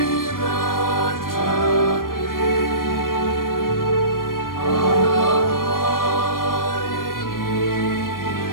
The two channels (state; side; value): late; right; 0.91 ms